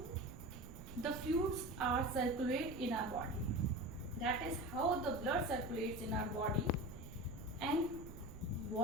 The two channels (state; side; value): noise; right; rumble, 13 dB below the sound